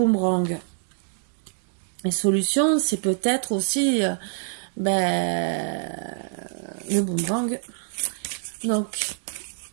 Les solutions, c'est peut-être aussi le boomerang. Donc,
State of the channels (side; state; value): left; silent; digital silence